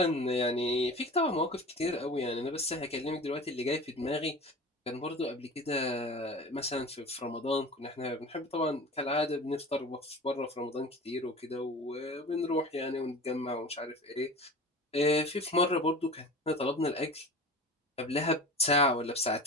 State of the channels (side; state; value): both; normal; correlation 0.35